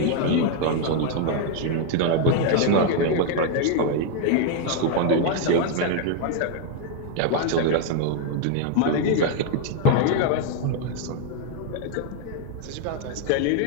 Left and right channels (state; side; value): different; both; correlation 0.00